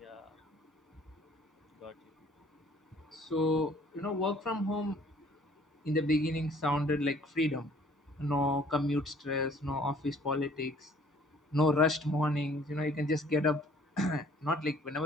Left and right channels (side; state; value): both; normal; correlation 0.56